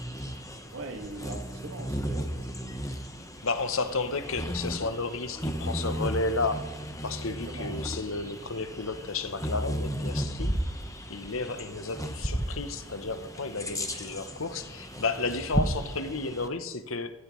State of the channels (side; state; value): both; normal; correlation 0.20